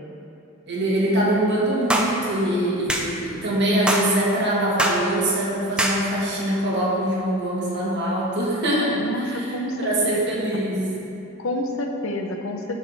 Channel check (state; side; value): normal; both; correlation 0.33